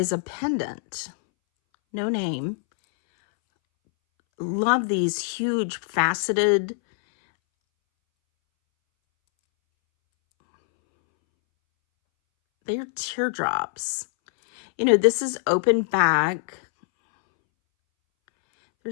a pendant. No name. Love these huge faceted. They're teardrops. You know, this is open back.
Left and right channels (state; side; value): silent; right; 63 dB below the other